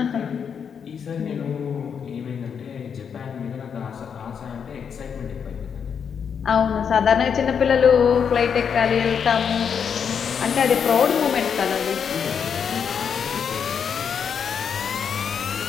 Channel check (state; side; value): quieter; right; 7.1 dB